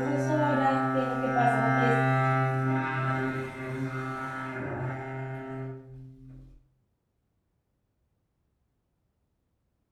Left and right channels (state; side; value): identical; both; correlation 1.00